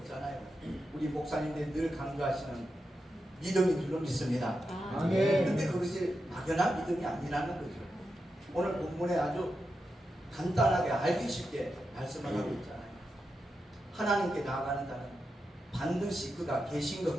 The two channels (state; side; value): normal; both; correlation 0.88